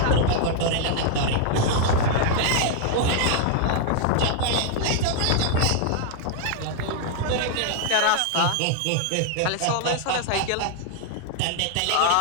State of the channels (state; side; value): different; both; correlation 0.00